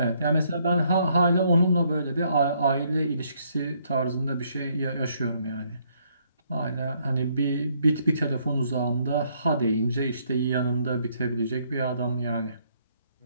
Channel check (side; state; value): both; inverted; correlation -0.69